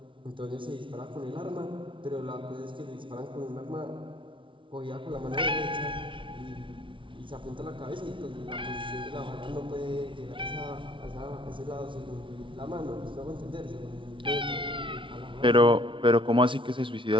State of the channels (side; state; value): left; late; 0.25 ms